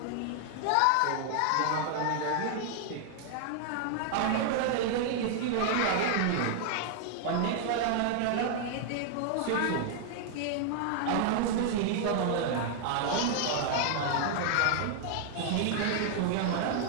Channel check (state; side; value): different; both; correlation 0.00